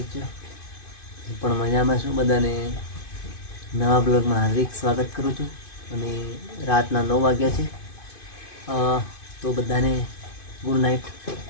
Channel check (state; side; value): late; right; 2.5 ms